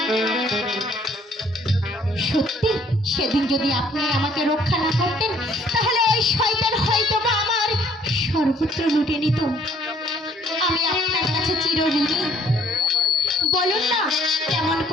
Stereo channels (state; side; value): normal; both; correlation 0.61